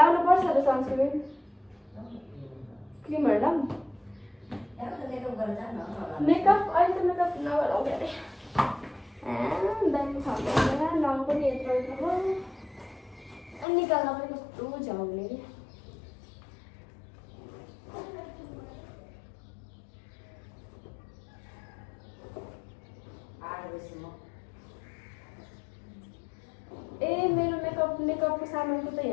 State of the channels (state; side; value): drops out; right; at 13.7 s